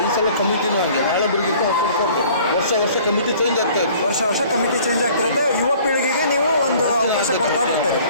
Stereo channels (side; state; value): both; inverted; correlation -0.52